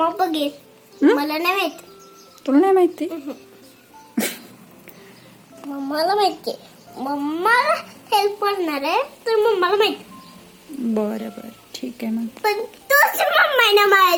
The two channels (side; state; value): both; identical; correlation 1.00